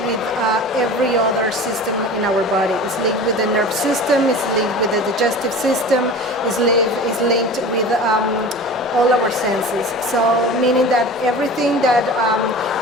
with every other system in our body. It's linked with the nerve system, it's linked with the digestive system, it's linked with all our senses. So meaning that everything that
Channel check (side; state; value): both; normal; correlation 0.37